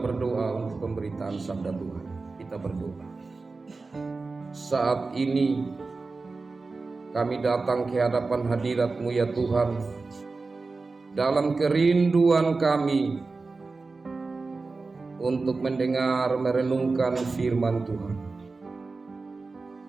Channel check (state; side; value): quieter; left; 3.9 dB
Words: untuk pemberitaan sabda Tuhan. Kita berdoa. Saat ini kami datang ke hadapan hadirat-Mu ya Tuhan, dalam kerinduan kami untuk mendengar merenungkan firman Tuhan.